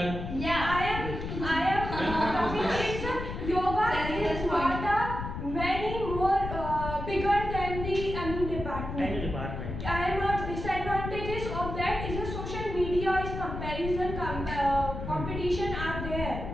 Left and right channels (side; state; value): left; noise; rumble, 6 dB below the sound